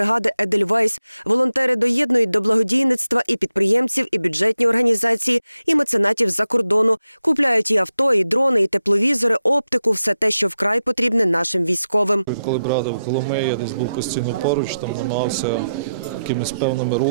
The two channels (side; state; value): both; inverted; correlation -0.88